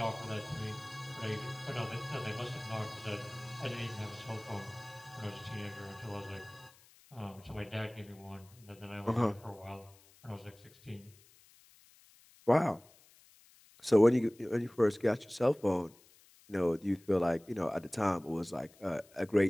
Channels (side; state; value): left; noise; hiss, 27 dB below the sound